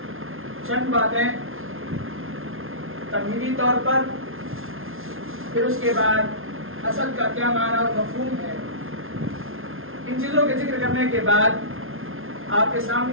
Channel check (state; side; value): late; left; 0.60 ms